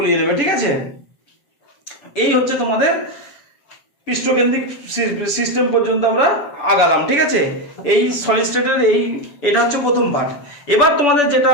নেবে। ঠিক আছে, এই হচ্ছে তোমাদের পৃষ্ঠকেন্দ্রিক সিস্টেম পর্যন্ত আমরা আগালাম। ঠিক আছে, এই সলিড স্টেটের এটা হচ্ছে প্রথম পার্ট। এবার তোমাদের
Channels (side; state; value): right; late; 6.9 ms